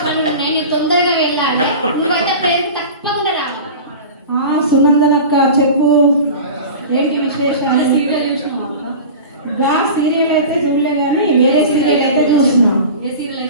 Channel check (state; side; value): inverted; both; correlation -0.34